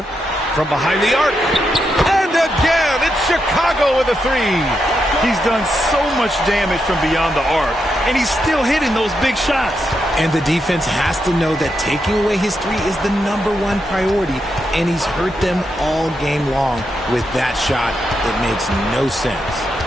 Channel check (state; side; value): normal; both; correlation 0.83